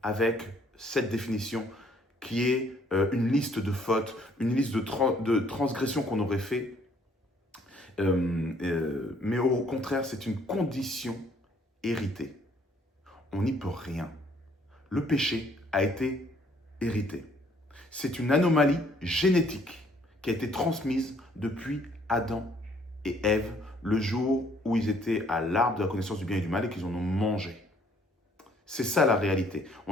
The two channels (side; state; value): both; normal; correlation 0.63